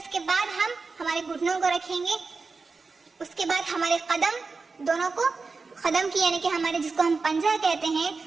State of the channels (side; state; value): left; quieter; 4.3 dB